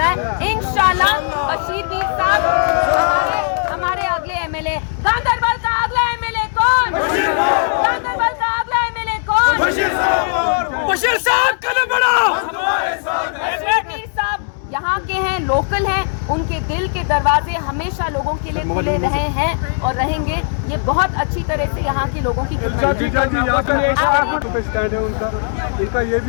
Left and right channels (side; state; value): right; silent; digital silence